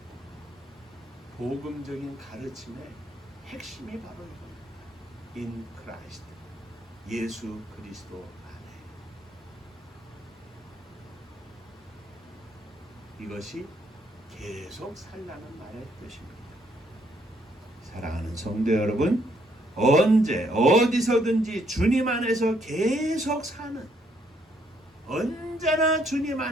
복음적인 가르침의 핵심이 바로 이겁니다. In Christ, 예수 그리스도 안에. 이것이 계속 살라는 말의 뜻입니다. 사랑하는 성도 여러분, 언제 어디서든지 주님 안에서 계속 사는, 언제나 주님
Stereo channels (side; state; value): both; normal; correlation 0.71